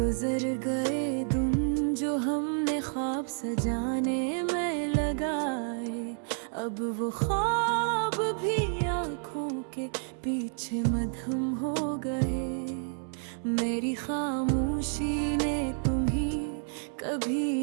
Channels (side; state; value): left; silent; 57 dB below the other